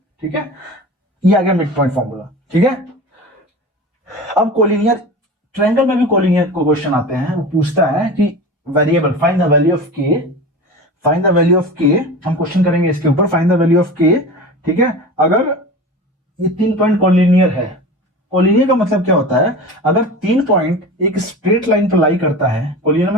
ठीक है, ये आ गया मिड पॉइंट फॉर्मूला। ठीक है, अब कोलिनियर ट्रायंगल में भी कोलिनियर को क्वेश्चन आते हैं, वो पूछता है कि variable find the value of k, हम क्वेश्चन करेंगे इसके ऊपर, find the value of k। ठीक है, अगर ये तीन पॉइंट कोलिनियर है, कोलिनियर का मतलब क्या होता है, अगर तीन पॉइंट एक स्ट्रेट लाइन पर लाई करता है, कोलिनियर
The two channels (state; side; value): normal; both; correlation 0.33